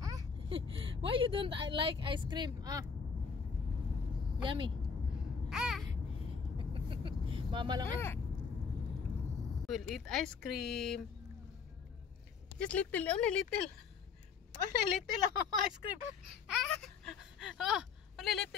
Why you don't like ice cream? Yummy. Mama lang eh. We'll eat ice cream. Just little, only little. Only little ice cream. Oh, only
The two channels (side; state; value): right; quieter; 5.9 dB